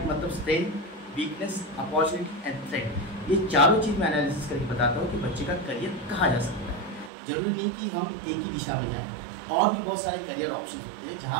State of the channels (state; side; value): drops out; left; at 7.1 s